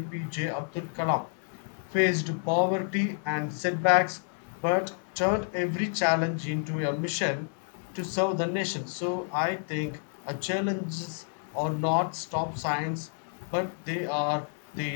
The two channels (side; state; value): right; silent; 58 dB below the other